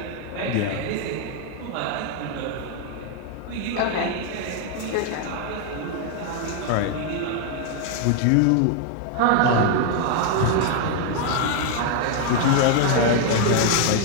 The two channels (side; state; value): both; different; correlation 0.00